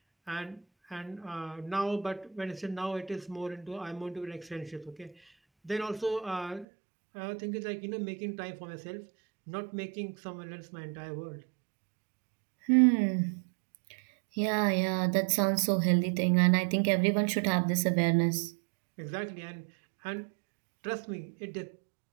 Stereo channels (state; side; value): drops out; left; at 6.7 s